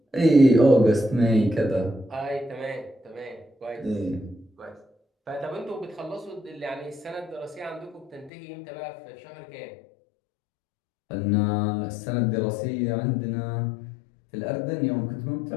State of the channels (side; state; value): right; drops out; at 8.3 s